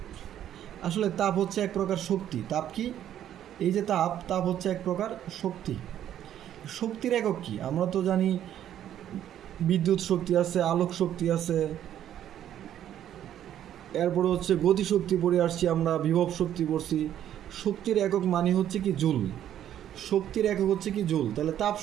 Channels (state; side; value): quieter; left; 10.9 dB